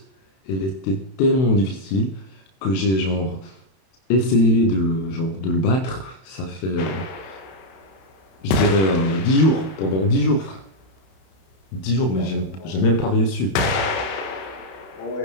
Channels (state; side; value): late; right; 31 ms